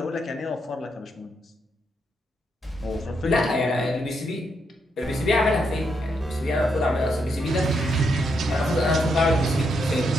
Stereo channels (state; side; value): normal; both; correlation 0.79